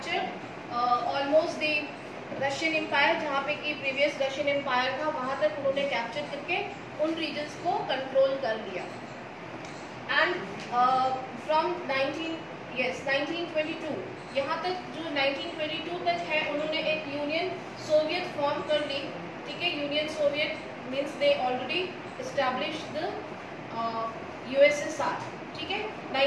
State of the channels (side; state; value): both; identical; correlation 1.00